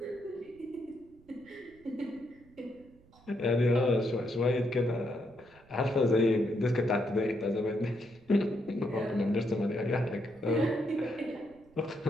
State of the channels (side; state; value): right; noise; rumble, 28 dB below the sound